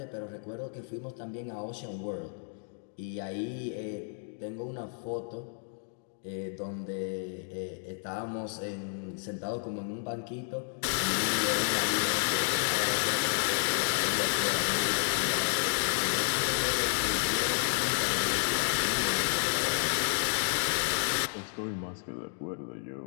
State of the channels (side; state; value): right; silent; 57 dB below the other